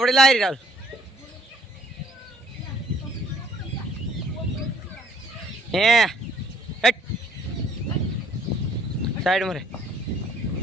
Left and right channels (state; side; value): normal; both; correlation 0.62